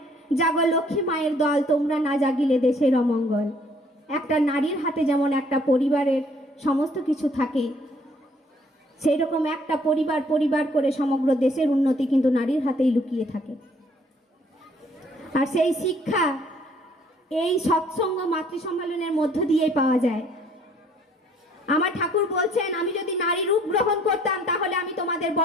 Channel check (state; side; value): normal; both; correlation 0.61